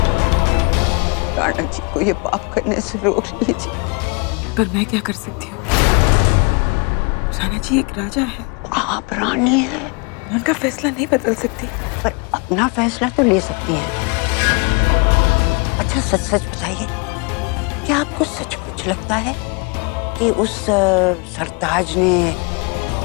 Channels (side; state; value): right; quieter; 30.7 dB